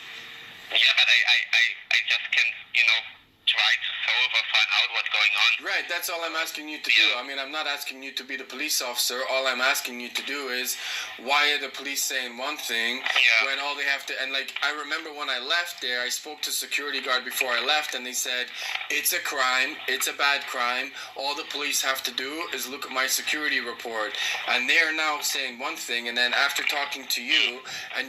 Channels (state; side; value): identical; both; correlation 1.00